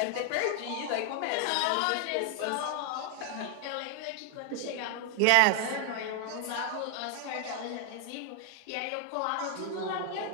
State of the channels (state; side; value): different; both; correlation 0.00